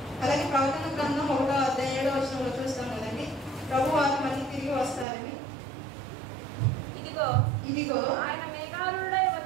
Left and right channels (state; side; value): drops out; left; at 5.1 s